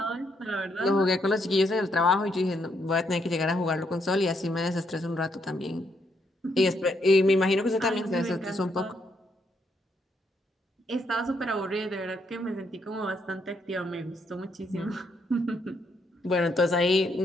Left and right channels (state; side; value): normal; both; correlation 0.75